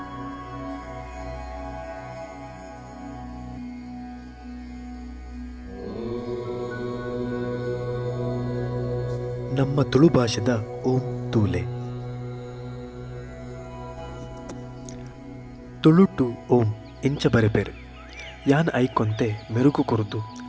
ನಮ್ಮ ತುಳು ಭಾಷೆದ ಓಂ ತೂಲೆ. ತುಳುಟು ಓಂ ಇಂಚ ಬರೆಪೇರು ಯಾನ್ ಐಕೊಂತೆ ಮೆರುಗು ಕುರಿತು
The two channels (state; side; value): identical; both; correlation 1.00